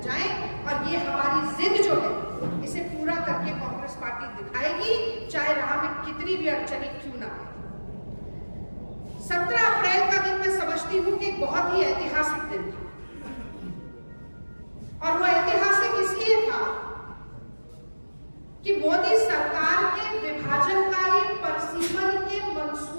जाएं। और ये हमारी जिद जो है, इसे पूरा करके कांग्रेस पार्टी दिखाएगी, चाहे राह में कितनी भी अड़चनें क्यों ना आए। 17 अप्रैल का दिन मैं समझती हूँ कि एक बहुत ही ऐतिहासिक दिन था और वो ऐतिहासिक इसलिए था कि मोदी सरकार के विभाजनकारी परिसीमन के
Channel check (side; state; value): both; inverted; correlation -1.00